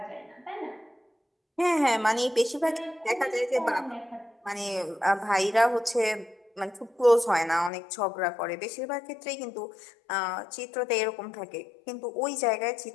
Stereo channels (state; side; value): drops out; right; at 7.7 s